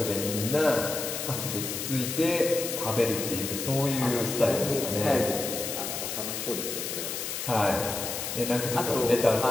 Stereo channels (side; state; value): left; noise; hiss, 4 dB below the sound